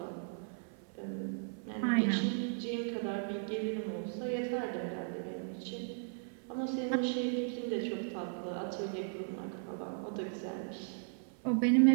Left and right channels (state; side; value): silent; left; 54 dB below the other